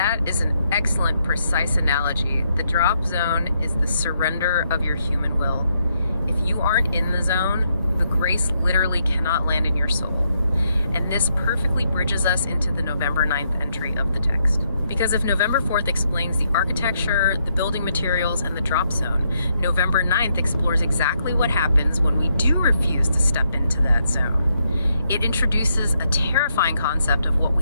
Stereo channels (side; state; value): both; inverted; correlation -0.77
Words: is an excellent, precise analogy. The drop zone is the surrender of your human will. If you aren't in the zone, the grace literally cannot land in your soul. And this perfectly bridges us into the November 9th entry of the text. Because if November 4th explains the architecture, the building materials, and the drop zone, November 9th explores exactly what happens when we do refuse to step into that zone. It introduces a terrifying concept of what